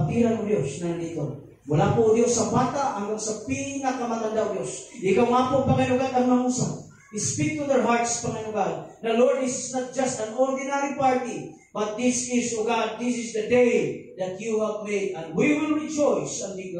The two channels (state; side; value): identical; both; correlation 1.00